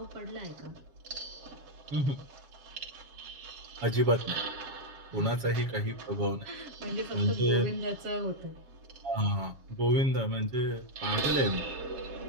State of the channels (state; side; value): late; left; 7.2 ms